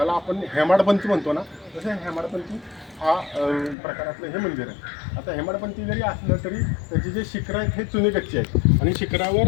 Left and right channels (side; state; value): right; drops out; at 3.8 s